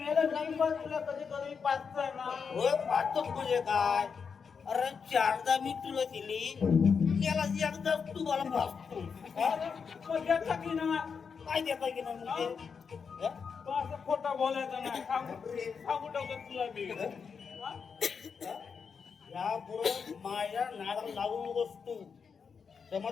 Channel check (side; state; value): right; quieter; 6.0 dB